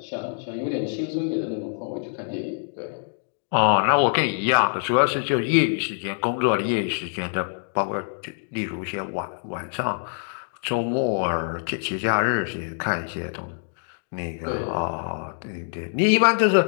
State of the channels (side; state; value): right; silent; digital silence